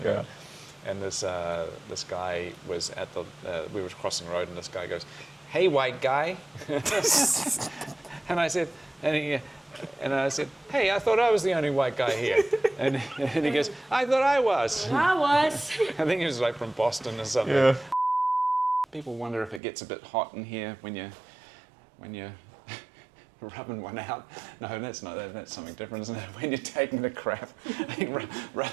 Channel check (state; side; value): drops out; left; at 19.6 s